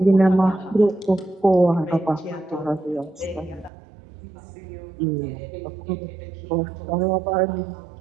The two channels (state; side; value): drops out; left; at 3.7 s